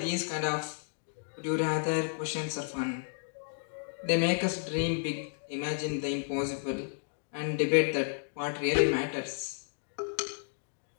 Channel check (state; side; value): silent; right; digital silence